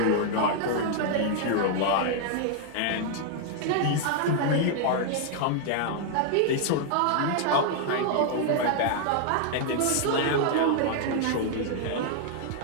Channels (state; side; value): different; both; correlation 0.00